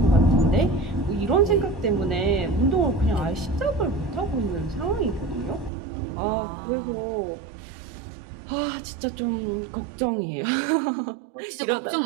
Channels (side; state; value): left; drops out; at 5.7 s